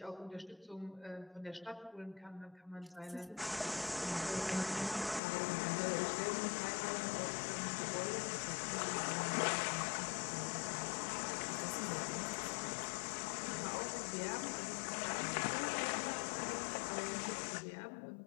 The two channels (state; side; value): drops out; right; at 5.2 s